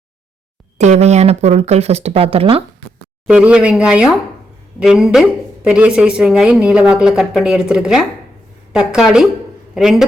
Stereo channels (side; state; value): both; normal; correlation 0.79